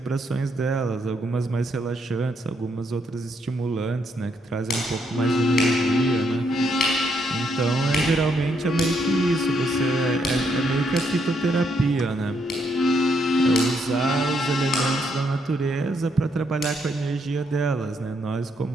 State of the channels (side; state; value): both; normal; correlation 0.75